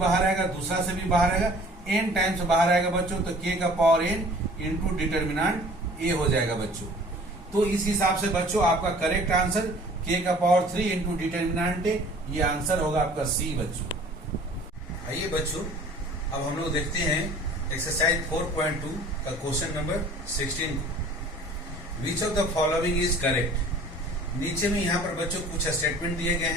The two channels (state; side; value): normal; both; correlation 0.49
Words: आएगा, दूसरा से भी बाहर आएगा, n टाइम्स बाहर आएगा बच्चों। तो के का पावर n इंटू डिटर्मिनेंट ए हो जाएगा बच्चों। तो इस हिसाब से बच्चों आपका करेक्ट आंसर के का पावर 3 इंटू डिटर्मिनेंट ए, ये आंसर होगा आपका सी बच्चों। आइए बच्चों अब हम लोग देखते हैं एक्सरसाइज 4.2 का क्वेश्चन नंबर 16 को। Which of the following is correct. नीचे में यहाँ पर बच्चों कुछ स्टेटमेंट दिए गए